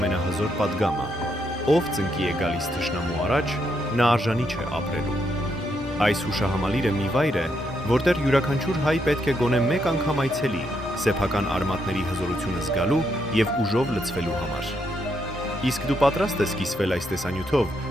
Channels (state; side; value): normal; both; correlation 0.78